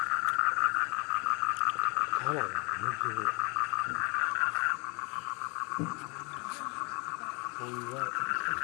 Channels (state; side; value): quieter; right; 31.1 dB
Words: ခါလာ